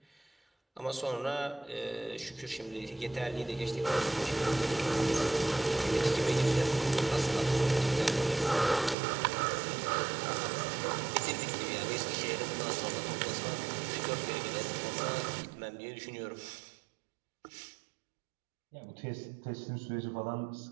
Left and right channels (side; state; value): left; drops out; at 9.0 s